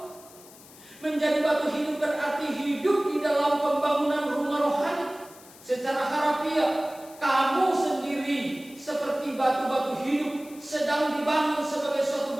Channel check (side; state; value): left; noise; hiss, 21 dB below the sound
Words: menjadi batu hidup berarti hidup di dalam pembangunan rumah rohani. Secara harafiah, kamu sendiri seperti batu-batu hidup sedang dibangun sebagai suatu